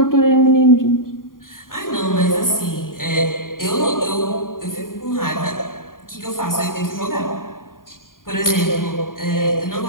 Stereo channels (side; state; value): right; late; 0.90 ms